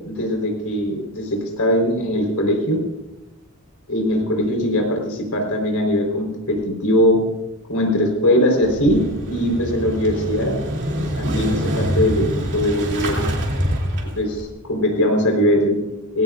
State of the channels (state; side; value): normal; both; correlation 0.22